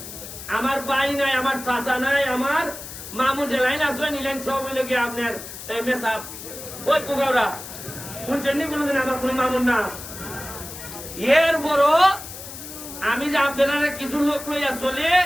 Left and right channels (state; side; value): noise; left; hiss, 12 dB below the sound